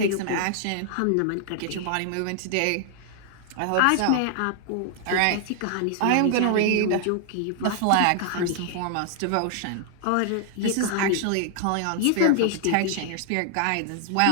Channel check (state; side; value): different; both; correlation 0.00